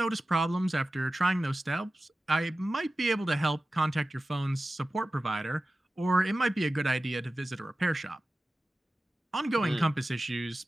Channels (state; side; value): normal; both; correlation 0.95